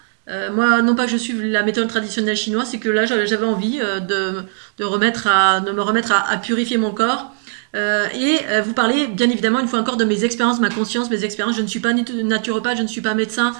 Moi, non pas que je suive la méthode traditionnelle chinoise, c'est que là, j'avais envie de me remettre à purifier mon corps. Vous parler, bien évidemment, une fois encore, de mes expériences, ma conscience, mes expériences. Je ne suis pas naturopathe, je ne suis pas médecin.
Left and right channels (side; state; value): left; silent; digital silence